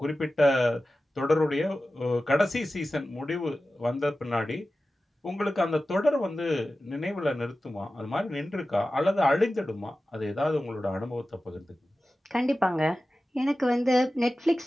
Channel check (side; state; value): both; normal; correlation 0.95